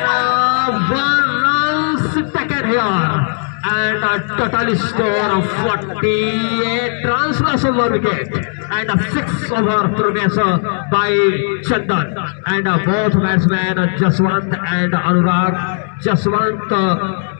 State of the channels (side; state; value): right; silent; digital silence